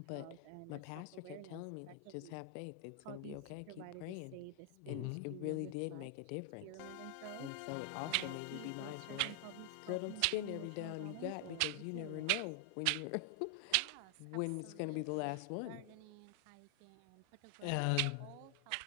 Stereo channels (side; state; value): both; different; correlation 0.00